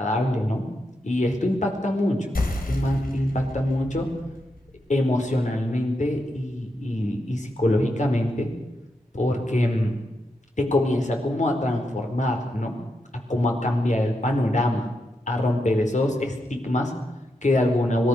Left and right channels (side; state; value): both; normal; correlation 0.84